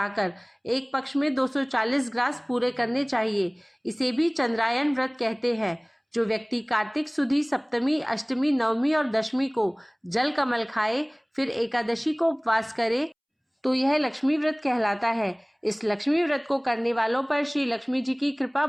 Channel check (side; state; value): both; identical; correlation 1.00